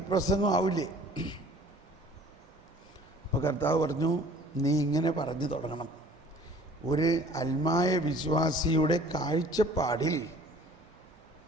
പ്രസംഗം ആവില്ലേ? അപ്പോൾ കർത്താവ് പറഞ്ഞു, നീ ഇങ്ങനെ പറഞ്ഞു തുടങ്ങണം, ഒരു അൽമായ വിശ്വാസിയുടെ കാഴ്ചപ്പാടിൽ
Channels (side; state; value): both; normal; correlation 0.50